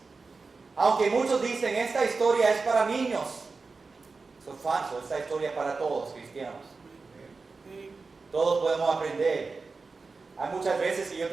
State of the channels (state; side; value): quieter; left; 4.2 dB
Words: Aunque muchos dicen esta historia es para niños. Eso es falso, esta historia es para todos cristianos. Todos podemos aprender. Hay muchas veces que yo